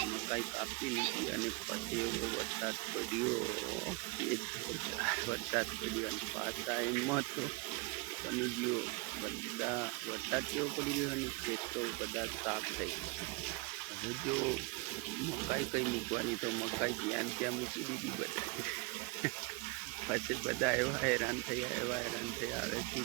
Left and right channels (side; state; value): left; quieter; 25.6 dB